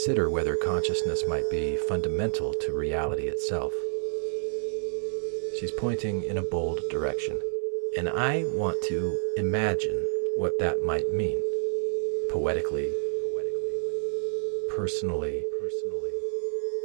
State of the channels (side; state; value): left; silent; 59 dB below the other